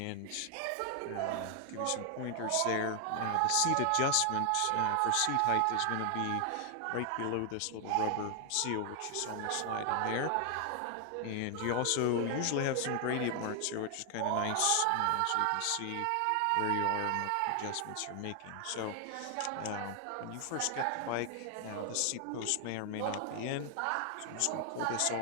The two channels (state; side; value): different; both; correlation 0.00